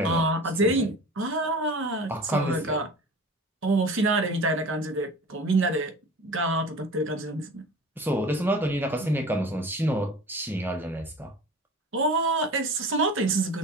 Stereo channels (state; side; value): normal; both; correlation 0.38